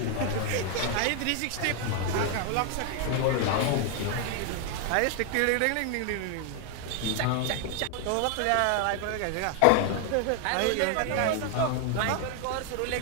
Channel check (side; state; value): both; different; correlation 0.00